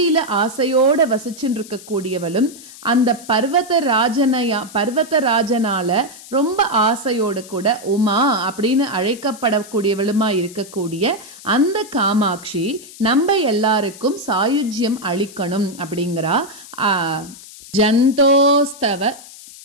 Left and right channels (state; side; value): noise; left; hiss, 18 dB below the sound